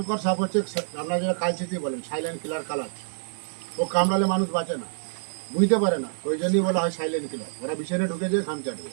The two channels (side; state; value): left; silent; digital silence